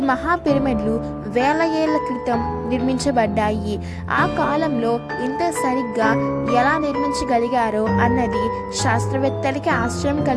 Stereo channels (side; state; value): both; identical; correlation 1.00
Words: మహా పిరమిడ్లు వేల ఏళ్ల క్రితం నిర్మించబడ్డాయి. ఆ కాలంలో ఇంత సరిగ్గా ఎలా నిర్మించగలిగారో అన్నది శాస్త్రవేత్తలకి ఆశ్చర్యం